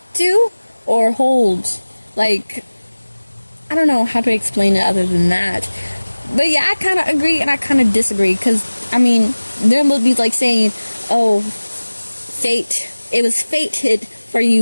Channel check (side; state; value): both; inverted; correlation -1.00